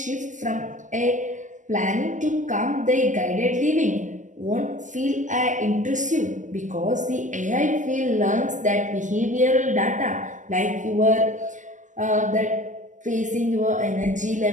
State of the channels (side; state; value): left; late; 0.37 ms